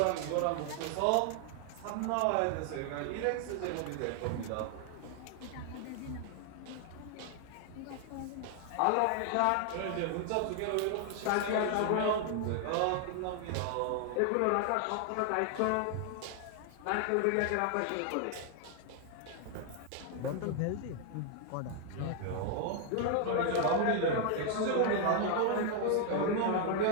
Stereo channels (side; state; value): both; different; correlation 0.00